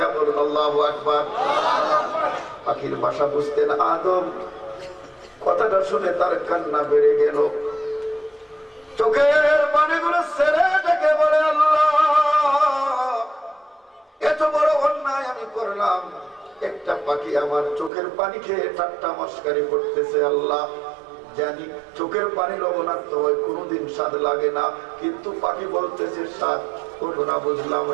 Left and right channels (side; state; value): left; drops out; at 17.9 s